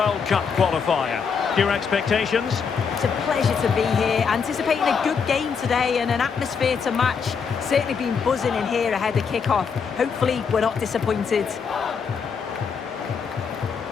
Cup qualifier. Your expectations? It's a pleasure to be here, anticipating a good game today and an atmosphere to match. Certainly been buzzing in here ahead of kick-off. Hopefully we're not disappointed.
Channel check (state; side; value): quieter; right; 6.1 dB